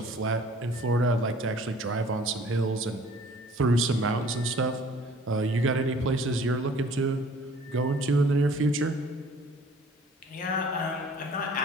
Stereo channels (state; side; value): normal; both; correlation 0.52